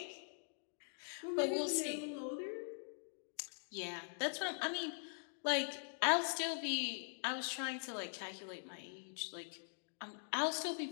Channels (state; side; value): silent; right; digital silence